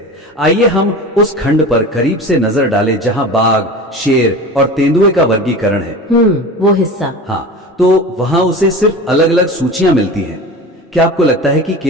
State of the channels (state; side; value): normal; both; correlation 0.33